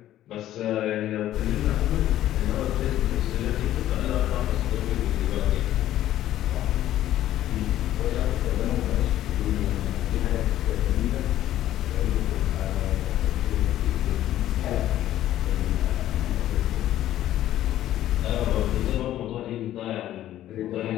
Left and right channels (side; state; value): right; quieter; 13.0 dB